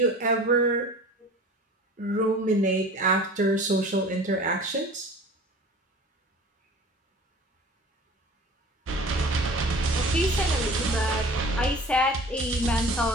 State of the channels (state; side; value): normal; both; correlation 0.41